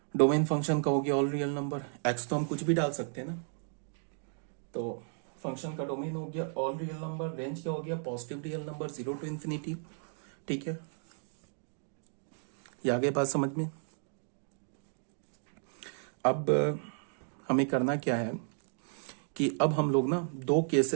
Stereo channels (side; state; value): left; silent; 55 dB below the other